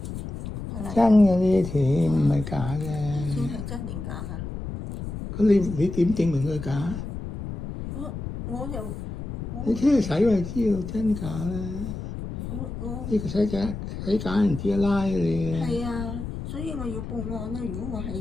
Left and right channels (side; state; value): left; noise; rumble, 7 dB below the sound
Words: 真嘅呢啲錢唔係假嘅。錢係真定假啊？咁你點證明佢假？我又你聽佢使咪知道真假啦。呢個使假唔知拉你嘅。係啊，所以我要報案啦。如果我係